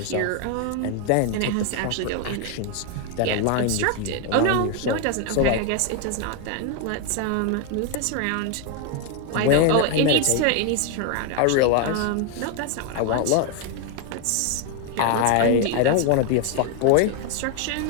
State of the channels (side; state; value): both; different; correlation 0.01